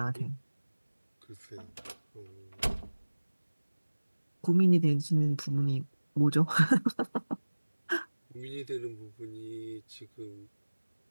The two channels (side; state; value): both; inverted; correlation -1.00